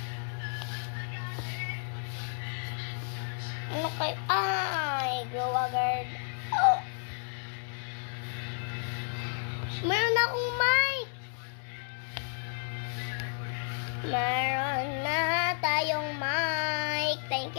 Ano kayo? Ay, glow agad. Oh! Meron akong mic! Meron na tayong mic. Thank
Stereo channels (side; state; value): right; silent; 57 dB below the other